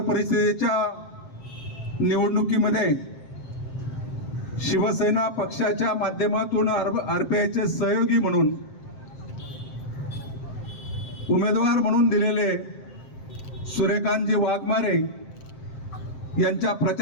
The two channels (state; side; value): late; right; 7.7 ms